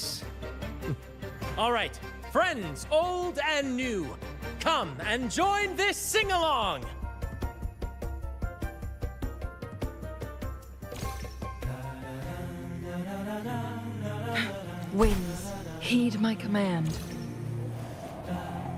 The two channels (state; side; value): identical; both; correlation 1.00